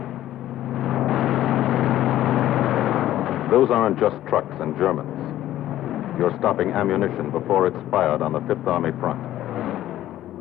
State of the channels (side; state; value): right; quieter; 13.4 dB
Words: Those aren't just trucks and Germans. You're stopping ammunition before it's fired on the Fifth Army front.